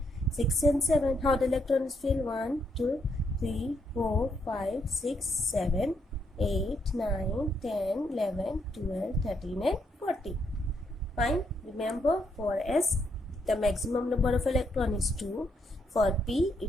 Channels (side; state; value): both; normal; correlation 0.76